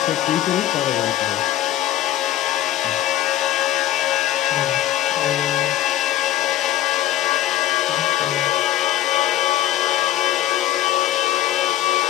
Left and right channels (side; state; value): right; quieter; 13.1 dB